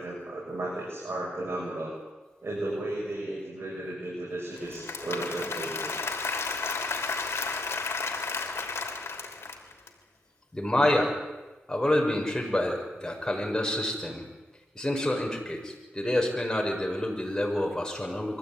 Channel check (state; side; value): normal; both; correlation 0.80